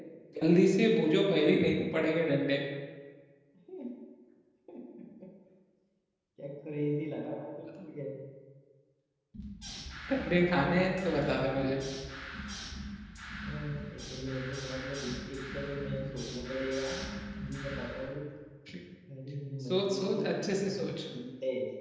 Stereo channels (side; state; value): both; identical; correlation 1.00